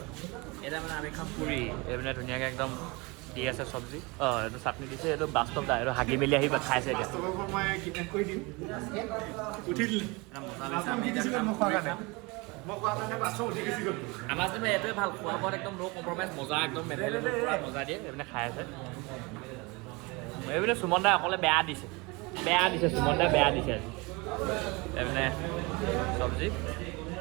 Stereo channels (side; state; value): left; quieter; 26.2 dB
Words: এতিয়া মানে আমি খাম পুৰি। এইপিনে ধুনীয়াকৈ একদম দি আছে চব্জি। এইটো চাটনি দিছে। এইটো বাস্তৱদা। এইটো হাগি মেলি আহি খাইছে এতিয়া। মই কিডনেপ কৰি দিম। উঠি দিলে আমাৰ যে এইটোৱে ভাল, খোৱা বোৱাত একদম ন' কম্প্ৰমাইজ। মজা একদম পুৰা মজা দিয়ে। এইপিনে খাই আছে। এইপিনে সুমন দাই অকলে বেয়া দিছে। বেয়া দিছে সুমন দা বেয়া দিছে আজি মানে চব্জি